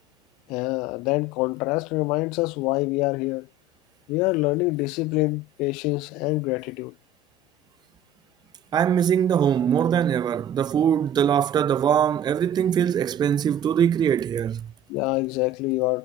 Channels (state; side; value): normal; both; correlation 0.43